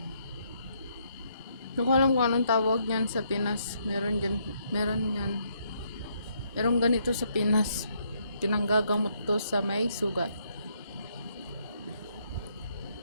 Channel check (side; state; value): both; inverted; correlation -0.73